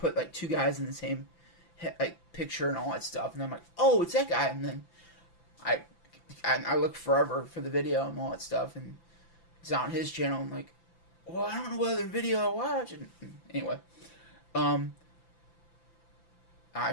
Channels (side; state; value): right; late; 5.9 ms